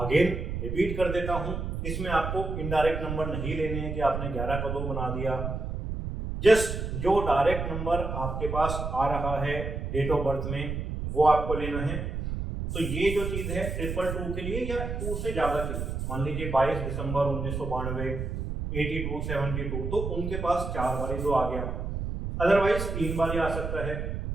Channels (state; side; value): noise; right; rumble, 4 dB below the sound